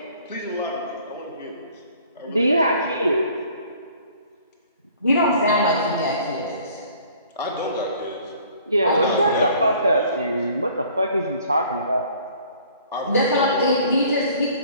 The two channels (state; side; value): inverted; both; correlation -0.54